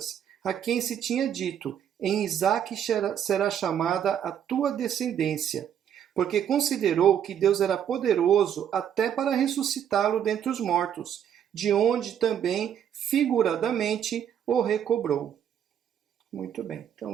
a quem se tinha dito: em Isaque será chamada a tua descendência, porque considerou que Deus era poderoso até para ressuscitá-lo dentre os mortos, de onde também, figuradamente, o recobrou. Muito bem.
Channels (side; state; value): left; quieter; 9.3 dB